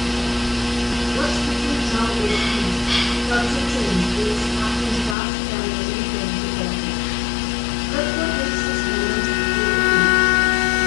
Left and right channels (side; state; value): right; drops out; at 5.2 s